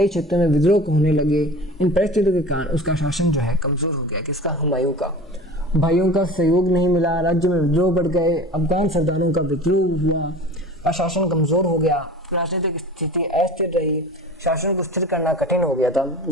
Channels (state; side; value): normal; both; correlation 0.38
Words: क्षेत्रों में विद्रोह होने लगे। इन परिस्थितियों के कारण उसका शासन जो है कमजोर हो गया। किसका? हुमायूं का। भाइयों का सहयोग नहीं मिला, राज्य में विद्रोह बढ़ गए, अफगान सरदारों का विद्रोह हुआ और शासन कमजोर हो गया, राजनीतिक स्थिति अस्थिर रही, शासन को स्थिर करना कठिन हो गया था।